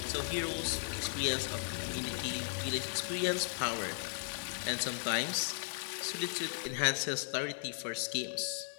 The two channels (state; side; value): silent; right; digital silence